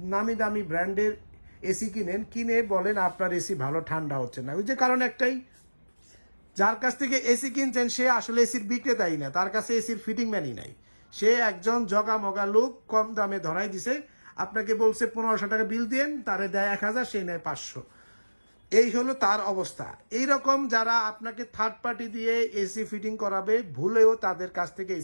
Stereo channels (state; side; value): inverted; both; correlation -1.00